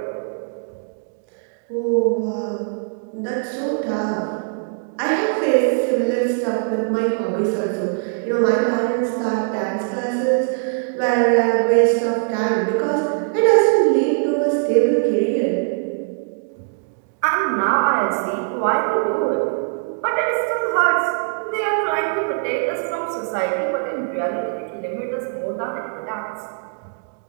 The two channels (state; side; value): silent; left; digital silence